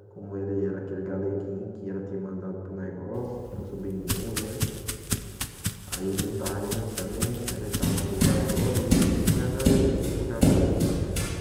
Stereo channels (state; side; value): identical; both; correlation 1.00